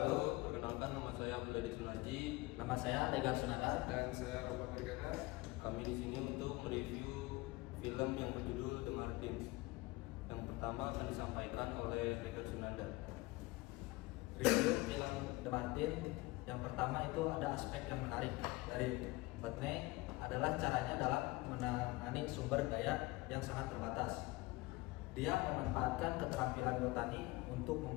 Perkenalkan, nama saya Abdul Sunarji. Nama saya Legar Sunada. Dan saya Robert Bergana. Kami di sini untuk mereview film yang berjudul The Martins. Yang pertama akan disampaikan oleh Legar Sunada. Review film The Martin. Yang pertama itu ada aspek yang menarik dari Whitney adalah caranya dalam menangani sumber daya yang sangat terbatas. Dia memanfaatkan keterampilan botani untuk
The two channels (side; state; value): right; quieter; 21.4 dB